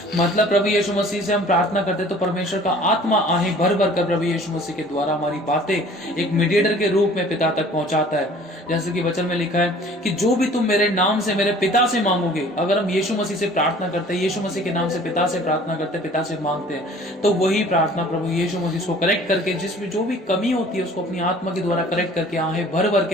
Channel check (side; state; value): both; normal; correlation 0.50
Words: मतलब प्रभु यीशु मसीह से हम प्रार्थना करते तो परमेश्वर का आत्मा आहें भर भर कर प्रभु यीशु मसीह के द्वारा हमारी बातें एक मीडिएटर के रूप में पिता तक पहुंचाता है। जैसे कि वचन में लिखा है कि जो भी तुम मेरे नाम से मेरे पिता से मांगोगे, अगर हम यीशु मसीह से प्रार्थना करते हैं, यीशु मसीह के नाम से पिता से प्रार्थना करते हैं, पिता से मांगते हैं, तो वही प्रार्थना प्रभु यीशु मसीह को करेक्ट करके जिसमें जो भी कमी होती है उसको अपनी आत्मा के द्वारा करेक्ट करके आहें भर भर